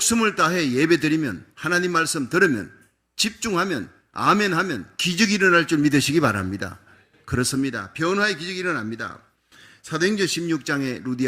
다해 예배드리면, 하나님 말씀 들으면, 집중하면, 아멘하면 기적이 일어날 줄 믿으시기 바랍니다. 그렇습니다. 변화의 기적이 일어납니다. 사도행전 16장에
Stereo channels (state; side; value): identical; both; correlation 1.00